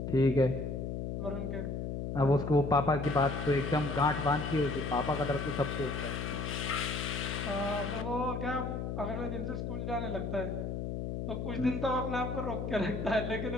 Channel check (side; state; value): left; noise; hum, 4 dB below the sound